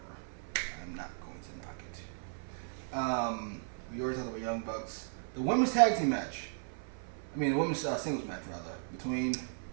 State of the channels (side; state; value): left; silent; 54 dB below the other